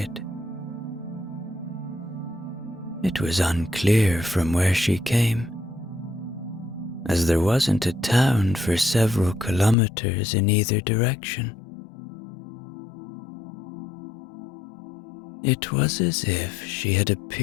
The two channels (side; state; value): right; drops out; at 9.8 s